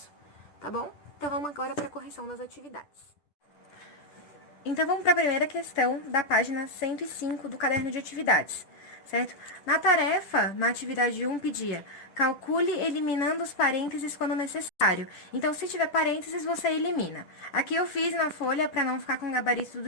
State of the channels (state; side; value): late; right; 10 ms